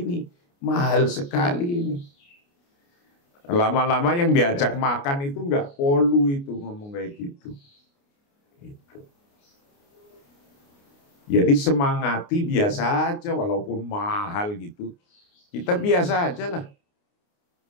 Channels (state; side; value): late; right; 29 ms